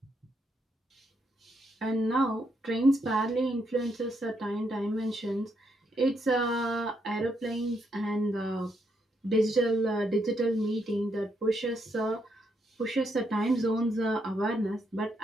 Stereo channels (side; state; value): both; normal; correlation 0.77